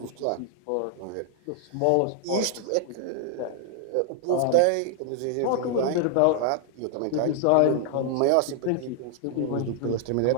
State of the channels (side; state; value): both; different; correlation 0.00